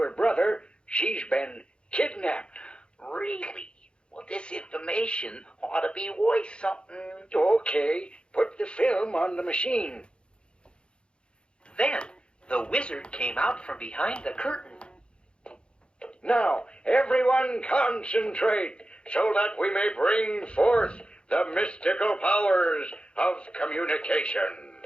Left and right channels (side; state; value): right; late; 0.054 ms